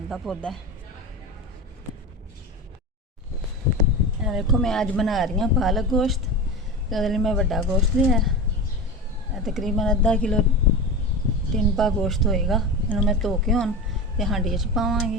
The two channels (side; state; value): both; normal; correlation 0.26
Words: का पौधा। देखो मैं आज बना रही हूँ पालक गोश्त। तो मैं बड़ा गोश्त लिया, तकरीबन अद्धा किलो टिनपा गोश्त होएगा। इन्हों मैं धो के हुण ते हांडी च